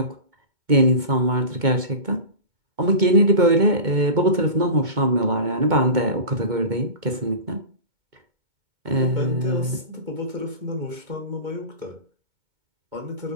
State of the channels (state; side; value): late; left; 2.2 ms